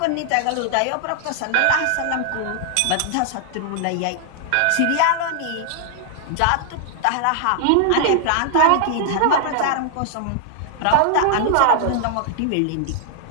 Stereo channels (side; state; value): both; different; correlation 0.00